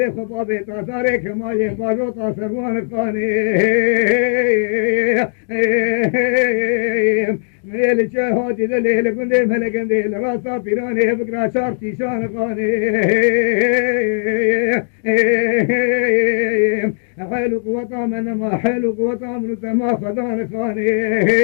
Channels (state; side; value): silent; right; digital silence